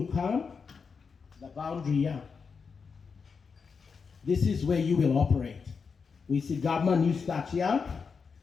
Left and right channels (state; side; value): quieter; right; 5.5 dB